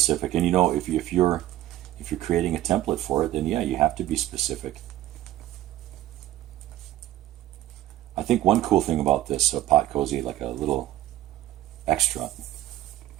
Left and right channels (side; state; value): left; quieter; 14.3 dB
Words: And you know, if you're creating a template for it, then yeah, you have to be specific. I think one cool thing about this Pot Cozy, like a little extra